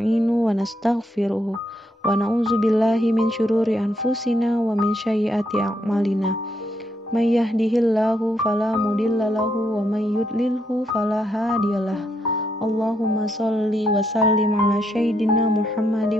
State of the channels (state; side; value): normal; both; correlation 0.77